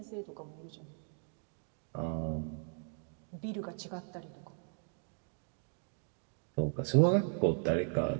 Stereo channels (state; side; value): silent; left; 53 dB below the other